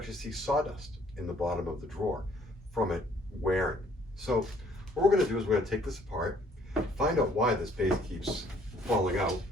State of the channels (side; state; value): both; normal; correlation 0.62